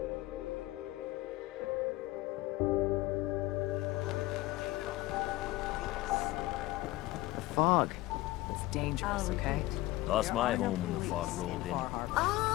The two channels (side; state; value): right; quieter; 18.3 dB